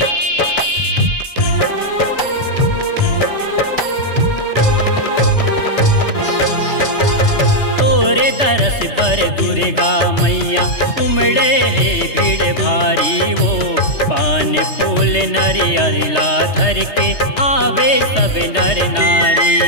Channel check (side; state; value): right; late; 3.3 ms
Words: बर दुर्गा मैया उमड़े है भीड़ भारी वो पान फूल नरियला धर के आवे सब नर